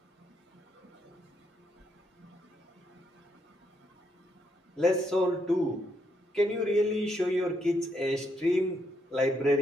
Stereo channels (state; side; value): normal; both; correlation 0.77